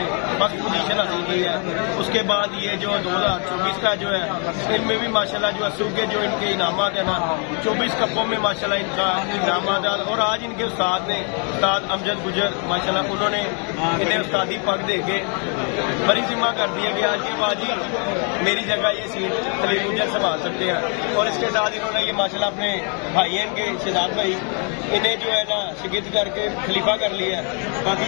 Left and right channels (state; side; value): quieter; right; 39.4 dB